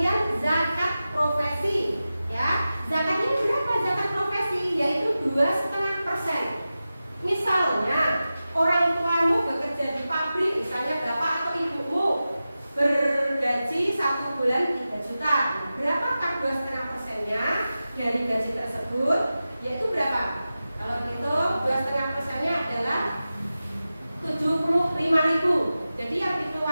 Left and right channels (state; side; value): inverted; both; correlation -0.94